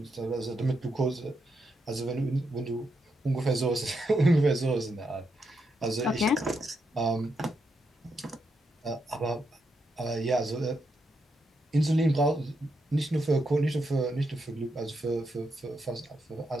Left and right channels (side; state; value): both; normal; correlation 0.82